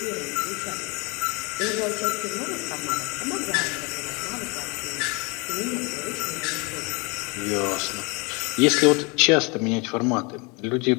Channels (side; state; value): right; quieter; 29.1 dB